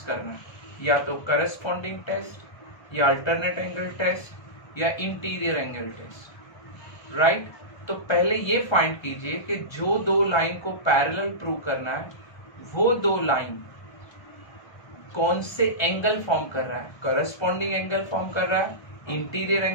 करना है, या तो करस्पॉन्डिंग टेस्ट या अल्टरनेट एंगल टेस्ट या इंटीरियर एंगल टेस्ट। राइट, तो पहले ये फाइंड कीजिए कि जो दो लाइन को पैरेलल प्रूव करना है वो दो लाइन कौन से एंगल फॉर्म कर रहा है, करस्पॉन्डिंग एंगल फॉर्म कर रहा है, इंटीरियर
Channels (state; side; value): late; right; 1.3 ms